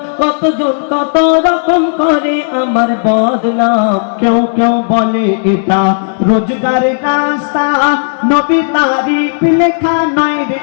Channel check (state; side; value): silent; right; digital silence